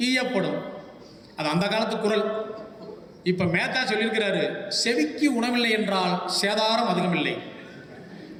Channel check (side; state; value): both; identical; correlation 1.00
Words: ஈயப்படும். அது அந்த காலத்து குரல். இப்போ மேத்தா சொல்லியிருக்கிறாரு, செவிக்கு உணவில்லை என்றால் சேதாரம் அதிகமில்லை,